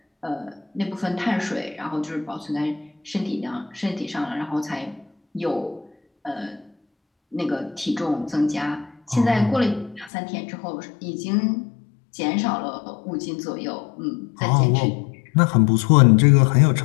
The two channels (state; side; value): drops out; right; at 10.1 s